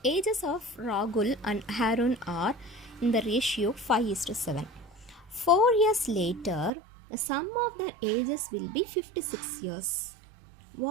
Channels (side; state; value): left; drops out; at 6.7 s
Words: ages of Rahul and Harun are in the ratio 5:7. 4 years later, the sum of their ages will be 56 years.